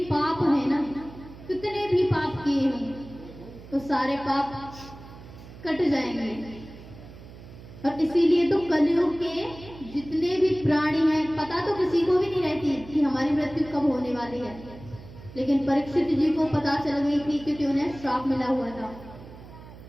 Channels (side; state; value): right; noise; hum, 17 dB below the sound